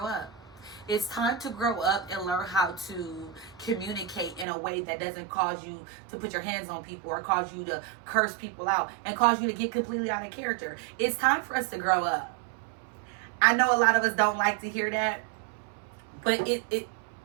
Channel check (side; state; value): left; drops out; at 4.5 s